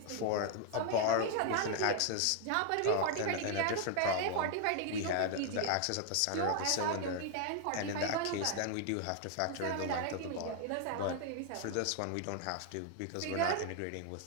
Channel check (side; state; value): both; different; correlation 0.00